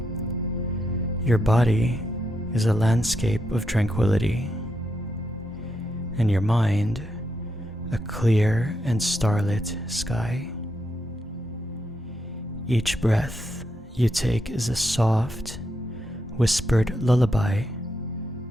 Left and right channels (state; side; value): normal; both; correlation 0.82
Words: Your body is a landscape of tranquility, and your mind a clear and starlit sky. Each breath you take is a soft, whispered lullaby